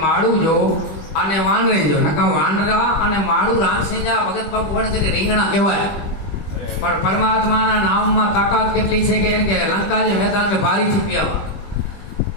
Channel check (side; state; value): right; late; 20 ms